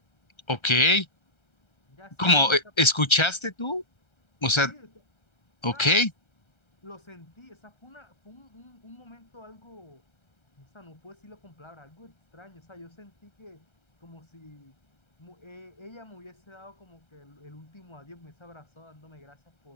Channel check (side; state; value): right; late; 1.3 ms